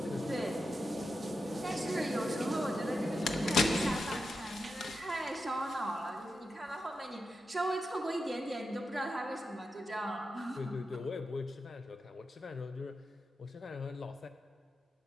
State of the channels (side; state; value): both; normal; correlation 0.89